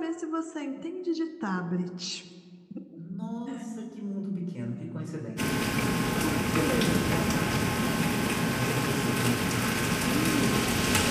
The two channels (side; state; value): both; identical; correlation 1.00